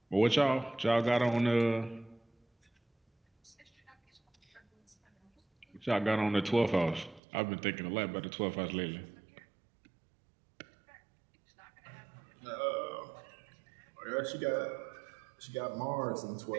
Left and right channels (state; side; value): drops out; left; at 7.2 s